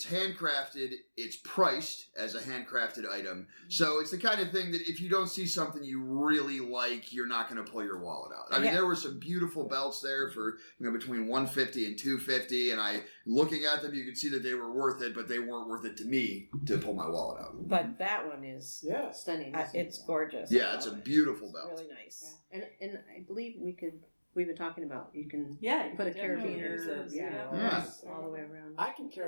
handcrafted. It's priced as a handcrafted item, so it's the kind of thing that if you don't see something you really like, you're not going to pull your wallet out. I mean, there were some beautiful belts there for between $150 and $250, and looking at them, you could see that they were worth it, but they weren't worth it to me to pull my wallet out. But that one is stunning. it's gorgeous. Yeah, it's a beautiful belt. Really nice. And I believe we've been talking about you can put a definitely use carabiner those, Yeah. all the way around. I can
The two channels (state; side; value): inverted; both; correlation -1.00